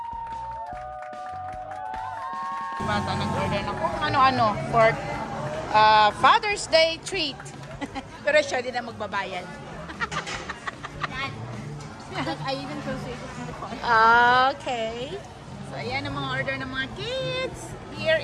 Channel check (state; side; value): identical; both; correlation 1.00